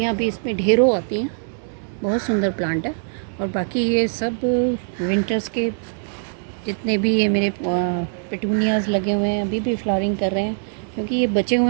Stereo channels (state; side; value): silent; left; digital silence